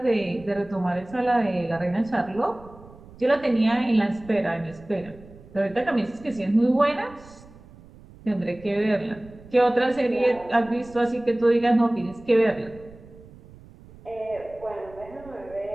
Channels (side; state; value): right; noise; rumble, 21 dB below the sound